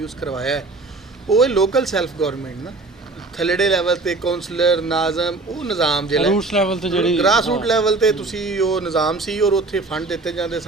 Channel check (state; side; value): quieter; left; 3.4 dB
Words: ਕਰਵਾਇਆ ਹੈ। ਉਹ ਲੋਕਲ ਸੈਲਫ ਗੌਰਮੈਂਟ ਨਾ ਥੱਲੜੇ ਲੈਵਲ 'ਤੇ ਕੌਂਸਲਰ ਨਾਜ਼ਮ ਉਹ ਨਿਜ਼ਾਮ ਜਿਹੜਾ ਰੂਟਸ ਲੈਵਲ 'ਤੇ ਜਿਹੜੀ ਗ੍ਰਾਸ ਰੂਟ ਲੈਵਲ 'ਤੇ ਤੁਸੀਂ ਉਹ ਨਿਜ਼ਾਮ ਸੀ, ਔਰ ਉੱਥੇ ਫੰਡ ਦਿੱਤੇ ਜਾਂਦੇ